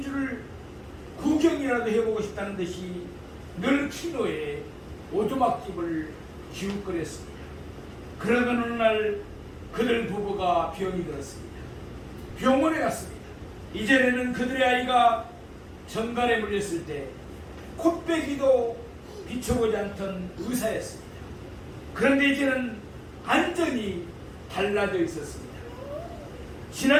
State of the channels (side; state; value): both; identical; correlation 1.00